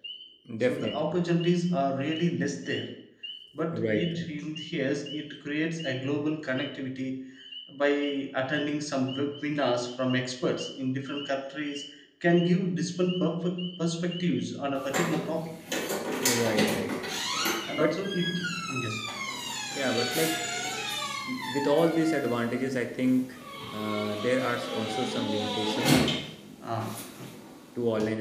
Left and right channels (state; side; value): identical; both; correlation 1.00